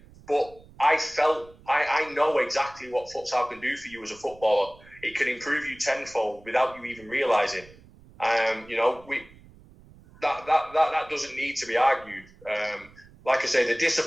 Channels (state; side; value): noise; right; rumble, 24 dB below the sound